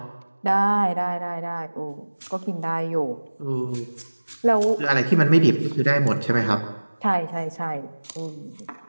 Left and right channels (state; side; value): inverted; both; correlation -1.00